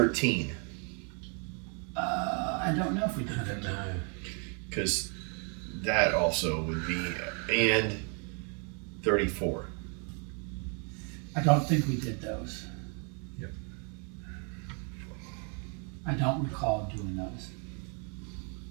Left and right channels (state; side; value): quieter; left; 38.0 dB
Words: I don't know if we did I don't know. Because that also would be and 34. I don't think we did those. Yep. I don't recall doing those.